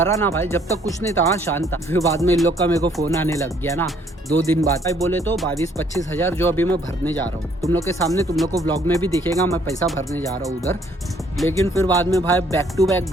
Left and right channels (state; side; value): normal; both; correlation 0.63